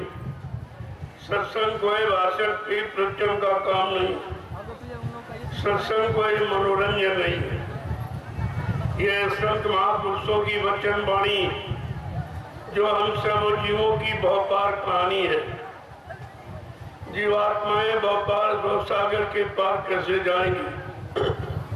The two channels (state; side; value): identical; both; correlation 1.00